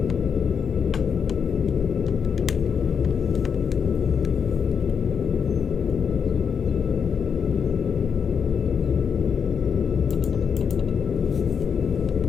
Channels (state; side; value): quieter; right; 6.7 dB